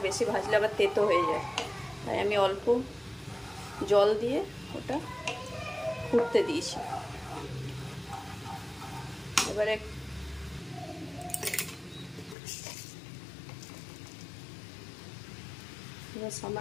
বেশি ভাজলে আবার তেতো হয়ে যায়। তাই আমি অল্প জল দিয়ে ওটা ফুটতে দিয়েছি। এবারে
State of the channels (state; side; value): drops out; right; at 12.4 s